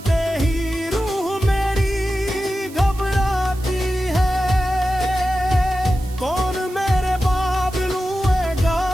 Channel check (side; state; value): right; noise; hiss, 20 dB below the sound